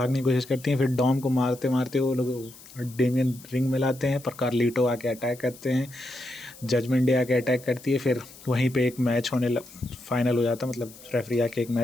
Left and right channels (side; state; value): left; noise; hiss, 20 dB below the sound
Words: की कोशिश करती हैं। फिर डॉम को मारते मारते वो लोग डेमियन रिंग में लाते हैं, पर कार्लिटो आके अटैक करते हैं, जजमेंट डे आके अटैक करती है। फिर वहीं पे एक मैच फाइनल हो जाता है, मतलब रेफरी आके एक